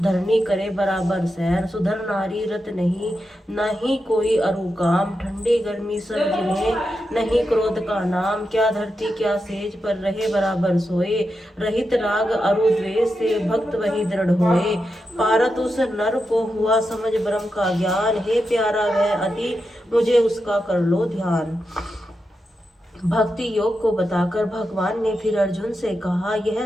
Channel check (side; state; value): both; normal; correlation 0.88